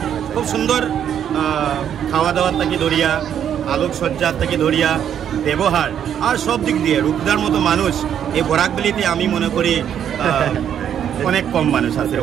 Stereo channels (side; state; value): left; quieter; 9.2 dB